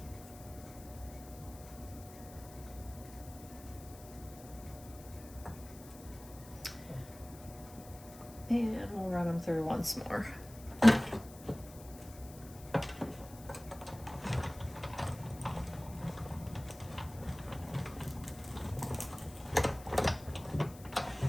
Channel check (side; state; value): left; noise; hiss, 18 dB below the sound